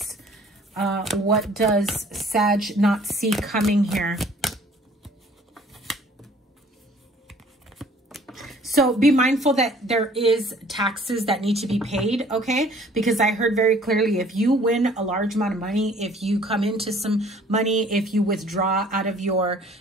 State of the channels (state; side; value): normal; both; correlation 0.55